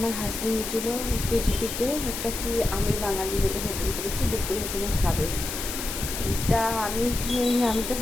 হাজব্যান্ড ছিল কেজিপিতে একটা কি আমি বাঙালি বলে হোটেল করেছি, দুপুরে ওখানে খাবে। তা আমি তো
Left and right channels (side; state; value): left; noise; hiss, 5 dB below the sound